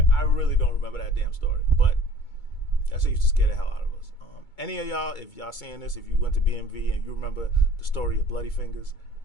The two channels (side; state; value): right; late; 2.2 ms